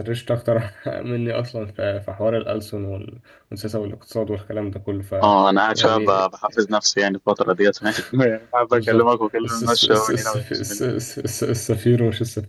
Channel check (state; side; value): identical; both; correlation 1.00